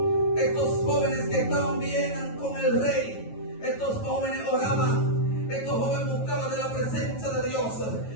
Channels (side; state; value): right; late; 9.2 ms